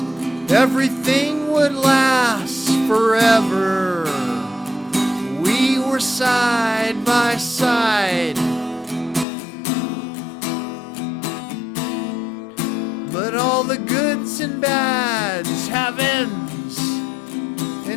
Everything would last forever. We were side by side. But all the goods and bads have ends,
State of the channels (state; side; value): drops out; right; at 9.2 s